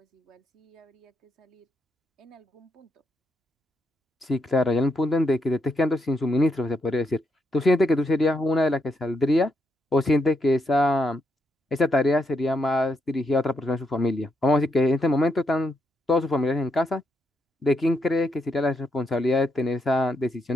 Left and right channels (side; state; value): both; normal; correlation 0.80